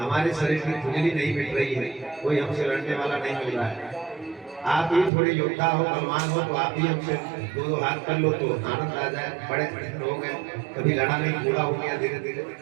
शरीर की खुजली नहीं मिट रही है, कोई हमसे लड़ने वाला नहीं मिल रहा है, आप ही थोड़े योद्धा हो, बलवान हो, तो आप ही हमसे दो हाथ कर लो तो आनंद आ जाए। बड़े हो गए, कभी लड़ा नहीं, बूढ़ा हो गया धीरे धीरे।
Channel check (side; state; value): left; drops out; at 5.1 s